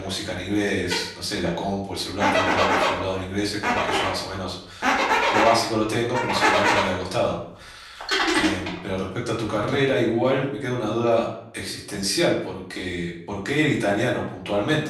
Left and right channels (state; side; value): identical; both; correlation 1.00